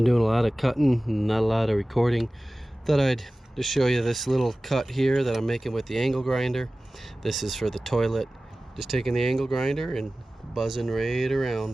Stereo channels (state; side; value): normal; both; correlation 0.97